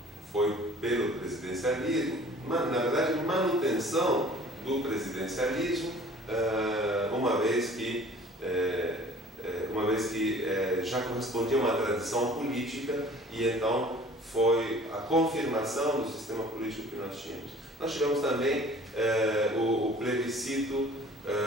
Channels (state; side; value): normal; both; correlation 0.49